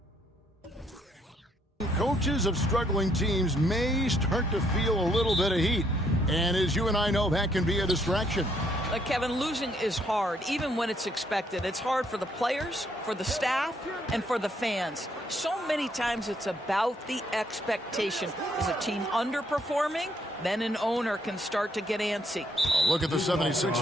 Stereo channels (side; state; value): both; normal; correlation 0.70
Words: coaches of struggling teams may start to feel a little bit of heat. And as you and I know, that can be a distraction. Kevin, losing is hard, even when it's expected. It's hard for the players, for the staff, and for the fans. So many times it's about the expectation. Is a team underperforming? Then an owner can start to get antsy. Look at the